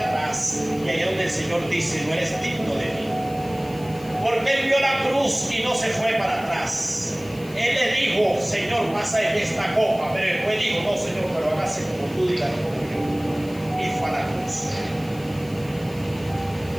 Y ahí es donde el Señor dice: no eres digno de mí. Porque Él vio la cruz y no se fue para atrás. Él le dijo: Señor, pasa de esta copa. Pero después dijo: no, Señor, pero hágase como tú digas, no como yo. Y fue a la cruz.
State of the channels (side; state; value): left; noise; hiss, 21 dB below the sound